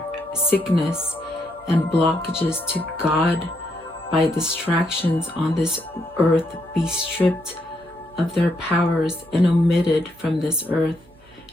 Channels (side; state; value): right; noise; hum, 29 dB below the sound